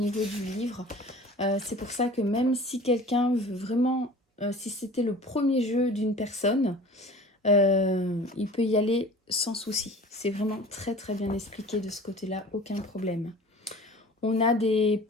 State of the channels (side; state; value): both; normal; correlation 0.42